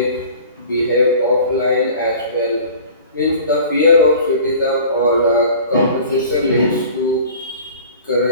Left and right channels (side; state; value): both; inverted; correlation -0.44